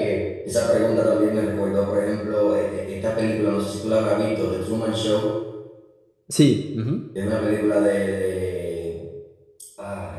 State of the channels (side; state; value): both; identical; correlation 1.00